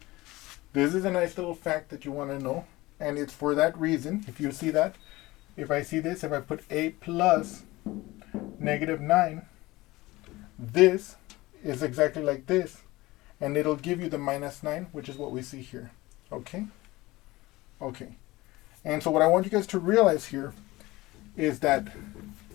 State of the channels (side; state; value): right; quieter; 19.9 dB